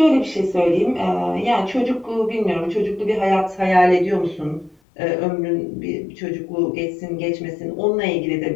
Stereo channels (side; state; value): right; drops out; at 4.8 s